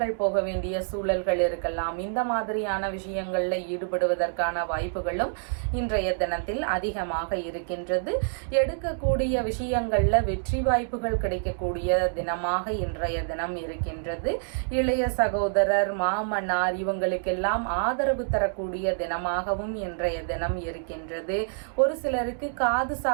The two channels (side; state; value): left; silent; digital silence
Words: போக வேண்டிய சூழல்கள் இருக்கலாம். இந்த மாதிரியான விஷயங்கள்ல ஈடுபடுவதற்கான வாய்ப்புகளும் இன்றைய தினத்தில் அதிகமாக இருக்கின்றது. எடுக்கக்கூடிய விஷயங்கள்ல வெற்றி வாய்ப்புகள் கிடைக்கக்கூடிய தினமாக இன்றைய தினம் இருக்கின்றது. இளைய சகோதரர், மாமனார் இவங்களுக்கெல்லாம் ஆதரவு தரக்கூடிய தினமாகவும் இன்றைய தினம் இருக்கின்றது. ஒரு சிலருக்கு காது